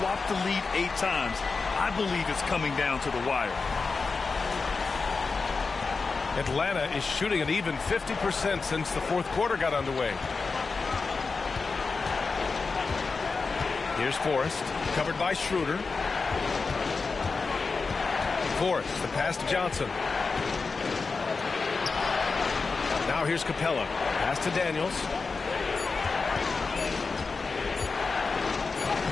the lead 8 times. I believe it's coming down to the wire. Atlanta is shooting an even 50% since the fourth quarter got underway. Here's Forrest, covered by Schroeder. Forrest, the pass to Johnson. Now here's Capella. Pass to Daniels.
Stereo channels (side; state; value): right; quieter; 4.4 dB